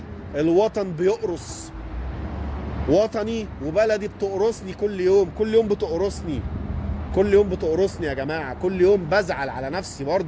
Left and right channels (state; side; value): identical; both; correlation 1.00